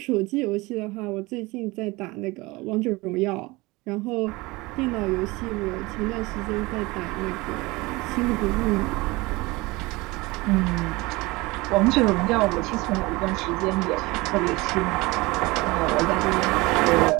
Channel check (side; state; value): left; quieter; 22.6 dB